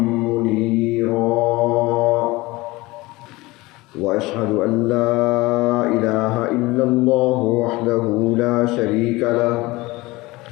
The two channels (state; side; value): quieter; right; 21.1 dB